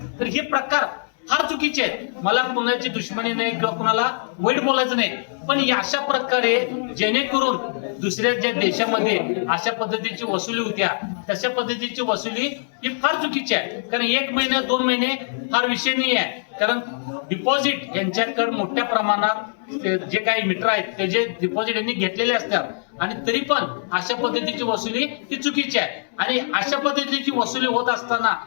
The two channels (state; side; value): silent; right; digital silence